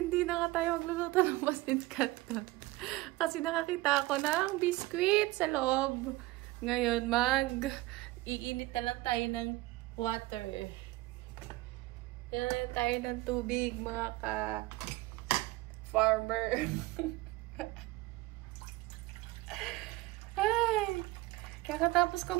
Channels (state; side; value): quieter; left; 19.5 dB